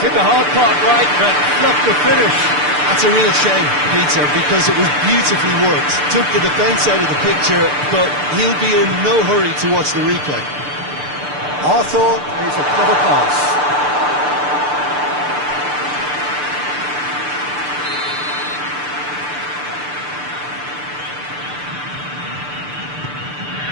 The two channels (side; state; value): left; late; 6.8 ms